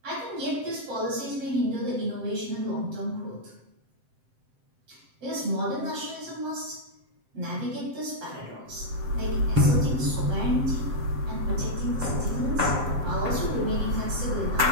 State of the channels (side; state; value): left; late; 7.7 ms